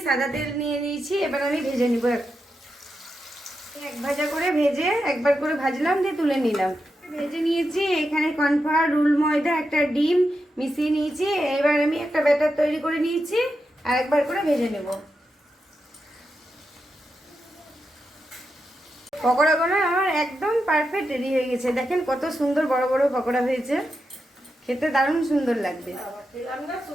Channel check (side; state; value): both; normal; correlation 0.87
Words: সাদা তেল নিয়ে নিয়েছি, এবার আমি ভেজে নিব। 1 ভাজা করে ভেজে একবার করে ভাজলাম, দিয়ে তুলে নিলাম। ভেজে নিয়েছি। এখানে কর্নফ্লাওয়ার, রুল ময়দা, একটা ডিম মিশিয়ে নিয়েছি। এবার আমি একটা ব্যাটার তৈরি করে নিয়েছি, আর একবার করে ভেজে নেব। পকোড়াগুলো আমার একদম পারফেক্ট রেডি হয়ে গেছে। দেখেন কত সুন্দর বড় বড় পকোড়া হয়েছে, খেতে দারুণ সুন্দর লাগবে।